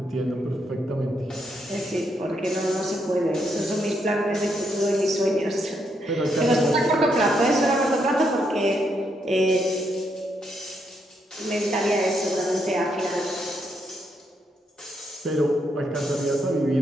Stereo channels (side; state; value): both; normal; correlation 0.77